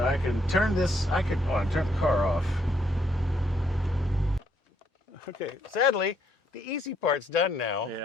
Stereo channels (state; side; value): normal; both; correlation 0.71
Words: I can turn this, I can turn the car off. Okay, sadly, the easy part's done now.